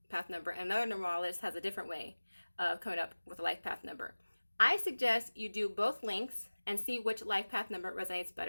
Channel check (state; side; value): inverted; both; correlation -1.00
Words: number, and another numerologist has a different way of coming up with a life path number. I suggest you do both links and see which life path number resonates